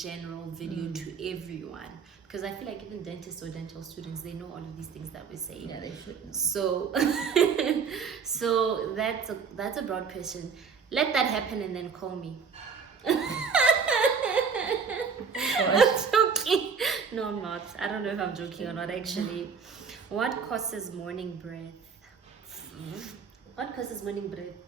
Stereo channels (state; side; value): quieter; left; 5.9 dB